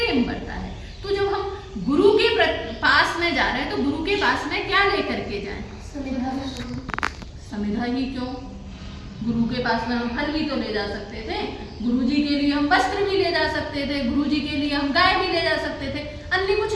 बढ़ता है। तो जब हम गुरु के पास में जा रहे हैं तो गुरु के पास में क्या लेकर के जाएं? समिधा ही क्यों, गुरु के पास में हम फल भी तो ले जा सकते थे, गुरु जी के लिए हम वस्त्र भी ले जा सकते थे, गुरु जी के लिए हम गाय भी ले जा सकते थे, अन्य कुछ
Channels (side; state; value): both; identical; correlation 1.00